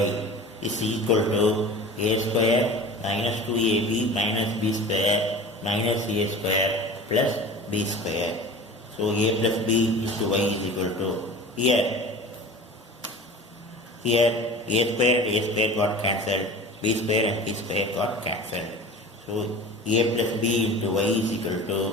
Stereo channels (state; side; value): normal; both; correlation 0.37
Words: is equal to a square minus 2ab minus b square minus a square plus b square. So a plus b into y is equal to, here a square and a square got cancelled, b square and b square got cancelled. So a plus b into y is equal to